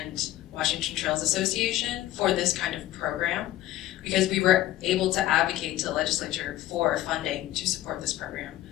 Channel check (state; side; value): quieter; right; 14.6 dB